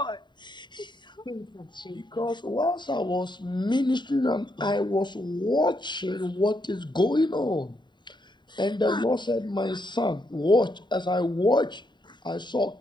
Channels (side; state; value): right; late; 0.22 ms